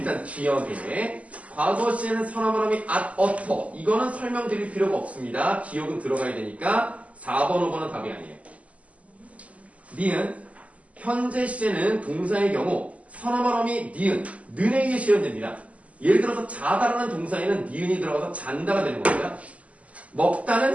기억에 과거 시에는 선어말 어미 at, 어터 이거는 설명드릴 필요가 없습니다. 기억은 들어가야 되니까 4번, 5번은 답이 아니에요. 니은 현재 시제는 동사의 경우 선어말 어미 니은, 는에 의해 실현됩니다. 예를 들어서 자다라는 동사에는 니은이 들어가서 잔다가 되는 겁니다.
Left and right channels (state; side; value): late; left; 0.068 ms